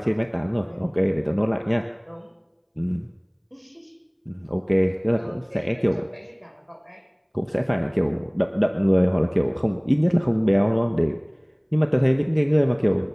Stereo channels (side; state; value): both; identical; correlation 1.00